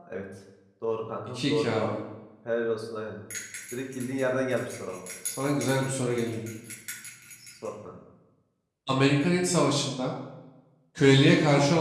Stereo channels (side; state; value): both; identical; correlation 1.00